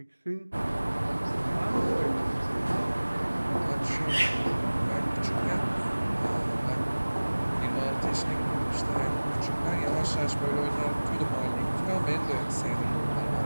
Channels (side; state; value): both; inverted; correlation -1.00